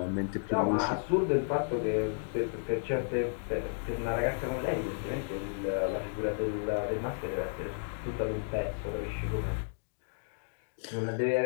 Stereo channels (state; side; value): silent; right; digital silence